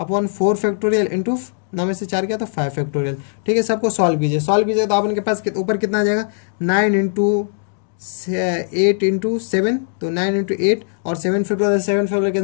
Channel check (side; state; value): right; silent; digital silence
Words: 4 फैक्टोरियल इंटू 9 में से 4 गया तो 5 फैक्टोरियल। ठीक है, सबको सॉल्व कीजिए, सॉल्व कीजिए तो अपन के पास ऊपर कितना आ जाएगा, 9 इंटू 8 इंटू 7 तो 9 इंटू 8 और 7 फैक्टोरियल